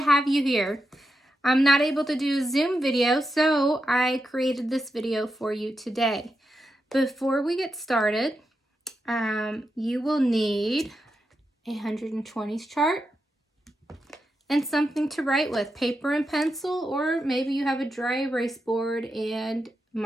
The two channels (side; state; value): both; normal; correlation 0.87